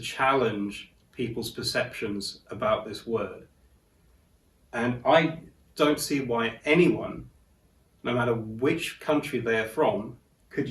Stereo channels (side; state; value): both; identical; correlation 1.00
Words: people's perceptions about this word. And I don't see why anyone, no matter which country they are from, could